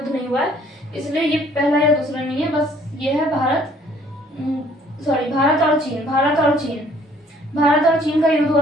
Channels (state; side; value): normal; both; correlation 0.59